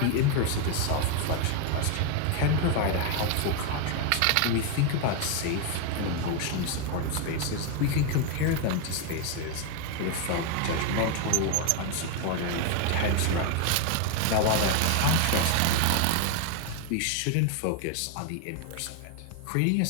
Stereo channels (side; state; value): both; different; correlation 0.01